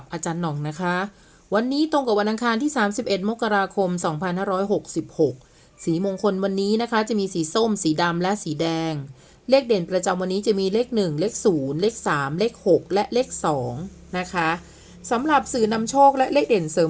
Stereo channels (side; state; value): both; identical; correlation 1.00